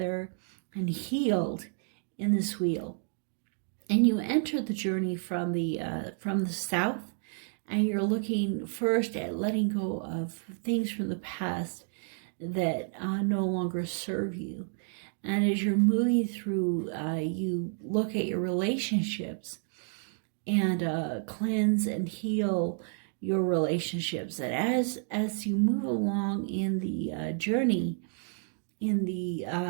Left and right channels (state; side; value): silent; left; 57 dB below the other